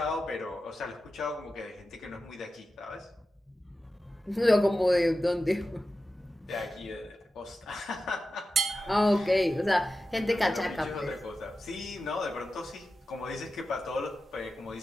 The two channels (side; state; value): both; normal; correlation 0.93